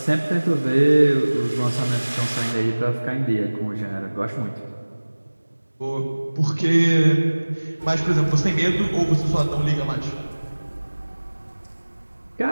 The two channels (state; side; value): inverted; both; correlation -1.00